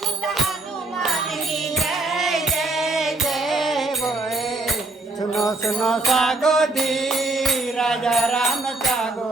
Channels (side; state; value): left; quieter; 3.1 dB